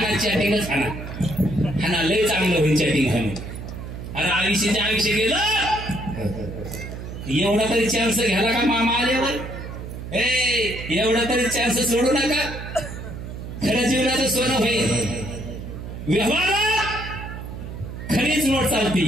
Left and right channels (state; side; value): noise; right; hum, 9 dB below the sound